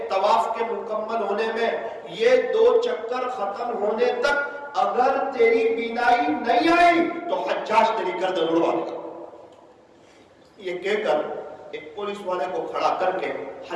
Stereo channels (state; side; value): identical; both; correlation 1.00